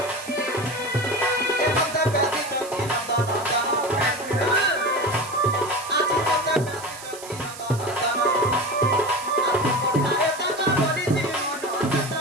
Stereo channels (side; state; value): right; noise; hiss, 15 dB below the sound